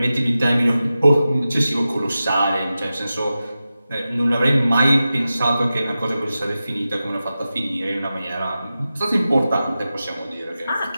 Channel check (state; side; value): inverted; both; correlation -0.93